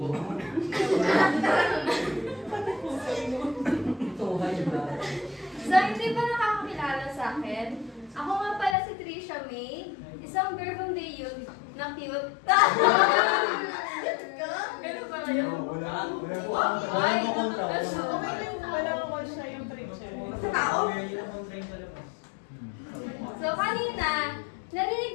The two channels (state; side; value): drops out; right; at 8.8 s